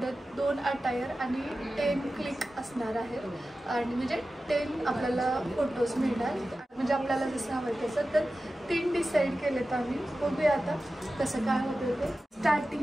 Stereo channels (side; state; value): both; normal; correlation 0.94